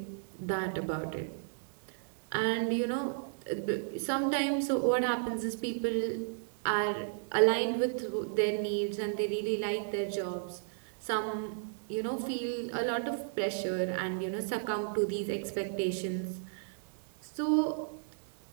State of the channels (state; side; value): silent; left; 55 dB below the other